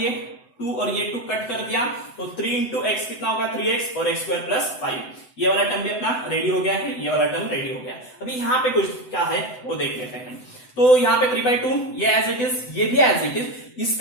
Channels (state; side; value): late; right; 7.9 ms